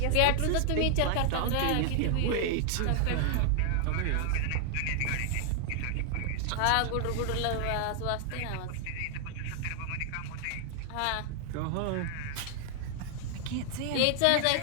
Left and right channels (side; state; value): both; different; correlation 0.00